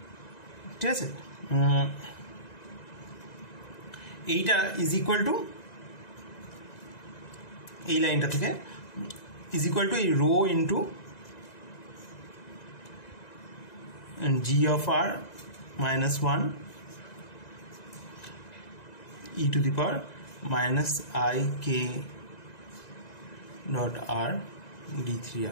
ঠিক আছে, এইটা ইজ ইকুয়াল টু এই লাইনটা থেকে ইজ ইকুয়াল টু এই rho into G of r minus 1 e to the power minus i k dot r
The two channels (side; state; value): right; late; 2.0 ms